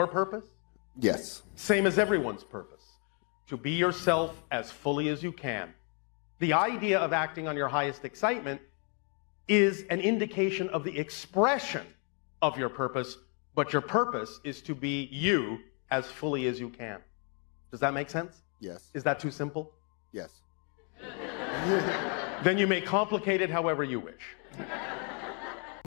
purpose? Yes. Same as everyone's purpose. To be yourself as fully as you can. The idea of acting on your highest excitement is an indication of the expression of your purpose, but your purpose is to be you as fully as you can. Does that make sense? Yes. Is that too simple? Yes. Then you may complicate it however you wish.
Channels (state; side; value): quieter; right; 38.4 dB